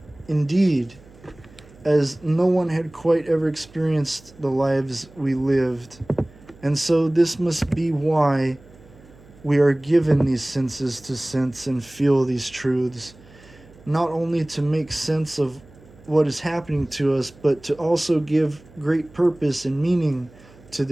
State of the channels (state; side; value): noise; right; hum, 24 dB below the sound